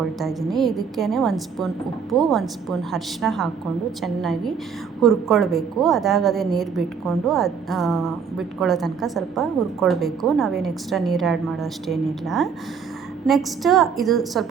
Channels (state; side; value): quieter; left; 6.4 dB